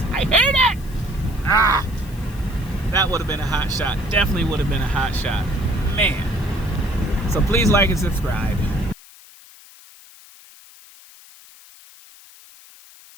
I hate it. That would have been a hot shot. Definitely would have been a hot shot, man. So please like and subscribe.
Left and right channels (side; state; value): left; noise; hiss, 22 dB below the sound